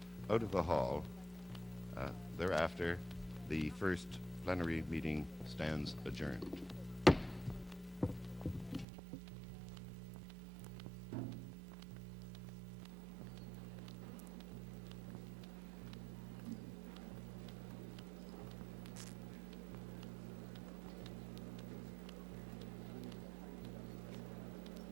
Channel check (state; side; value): drops out; left; at 8.8 s